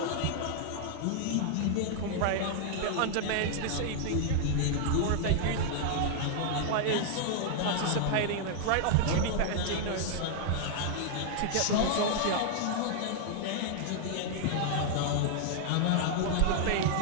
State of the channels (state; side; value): different; both; correlation 0.00